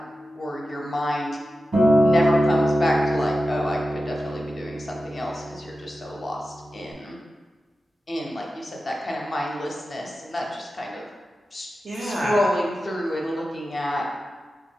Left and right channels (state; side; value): normal; both; correlation 0.93